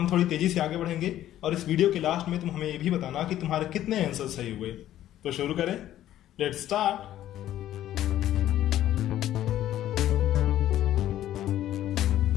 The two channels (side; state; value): right; quieter; 12.7 dB